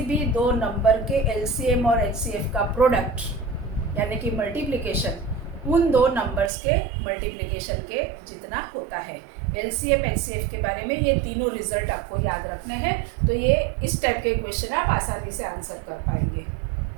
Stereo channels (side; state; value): left; drops out; at 6.5 s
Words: भी 2 नंबर के LCM और HCF का प्रोडक्ट यानी कि मल्टीप्लिकेशन उन 2 नंबर्स के मल्टीप्लिकेशन के जितना होता है। LCM HCF के बारे में ये तीनों रिजल्ट आपको याद रखने हैं, तो ये इस टाइप के क्वेश्चन आप आसानी से आंसर कर पाएंगे।